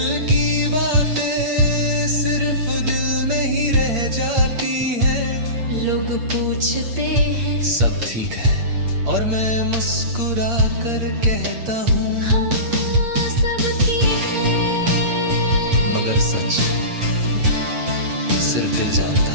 की बातें सिर्फ दिल में ही रह जाती है। लोग पूछते हैं सब ठीक है, और मैं मुस्कुरा कर कहता हूँ हाँ, सब ठीक है। मगर सच सिर्फ दिल जानता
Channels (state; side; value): late; left; 8.7 ms